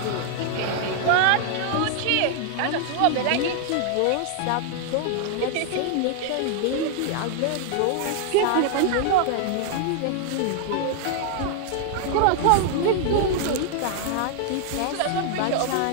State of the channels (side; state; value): both; different; correlation 0.00